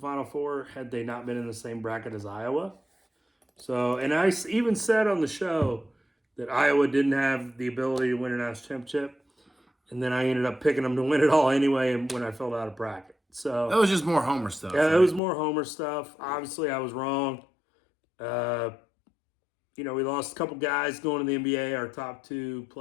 Four had they not been in the same bracket as Iowa. So, and I even said on the show that Iowa didn't have the ability to win a national championship, and then I ended up picking them to win it all anyway when I filled out a bracket. So that was just more Homer stuff. Yeah, it was more Homer stuff. Obviously, I was wrong. We lost a couple guys going to the NBA. Our top two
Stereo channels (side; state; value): right; drops out; at 15.2 s